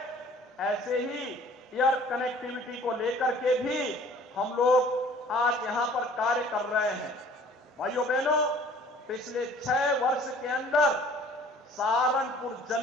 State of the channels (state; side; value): normal; both; correlation 0.52